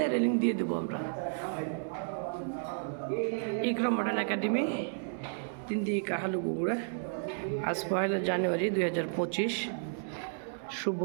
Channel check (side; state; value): left; silent; 56 dB below the other